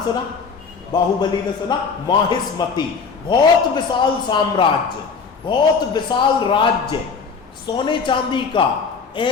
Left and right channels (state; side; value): quieter; right; 5.3 dB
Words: सुना? बाहुबली ने सुना? माहिष्मति, बहुत विशाल साम्राज्य, बहुत विशाल राज्य, सोने चांदी का।